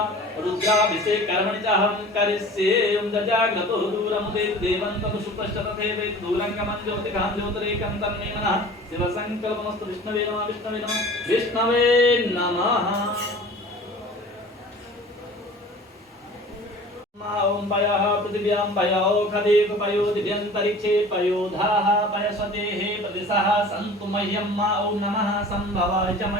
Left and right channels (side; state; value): both; normal; correlation 0.43